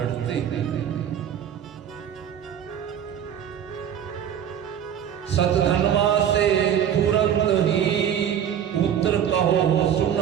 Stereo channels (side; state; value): left; quieter; 9.3 dB